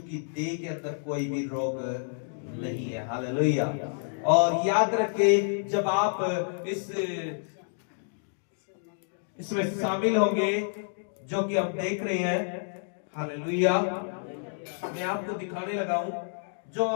की देह के अंदर कोई भी रोग नहीं है। हालेलुया। और याद रखे, जब आप इसमें शामिल होंगे, जो कि हम देख रहे हैं, हालेलुया, मैं आपको दिखाने लगा हूं, जो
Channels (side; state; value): right; silent; digital silence